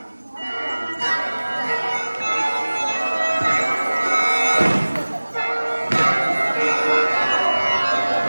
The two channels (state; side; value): inverted; both; correlation -1.00